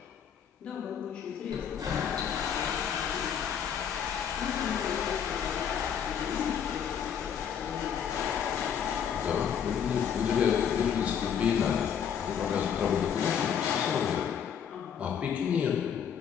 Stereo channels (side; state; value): right; quieter; 8.1 dB